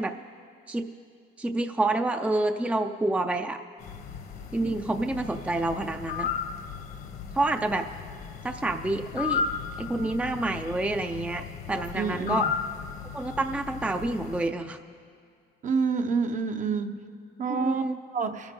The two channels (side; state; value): both; normal; correlation 0.64